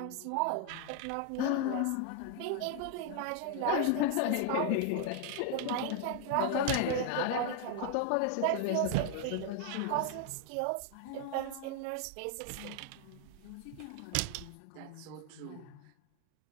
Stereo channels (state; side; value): different; both; correlation 0.00